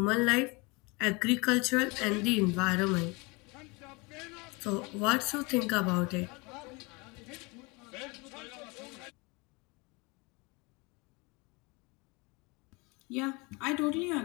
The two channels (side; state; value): right; quieter; 27.3 dB